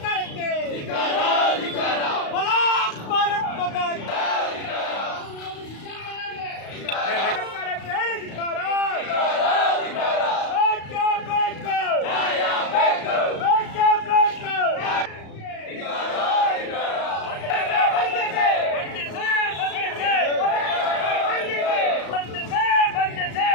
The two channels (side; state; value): right; late; 35 ms